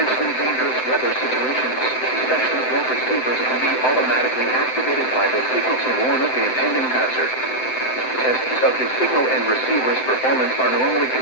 dangerous weather situations, specially built receivers can be automatically activated by the signal to warn of the impending hazard. Tests of the signal and receiver's performance are normally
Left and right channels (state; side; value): late; right; 7.8 ms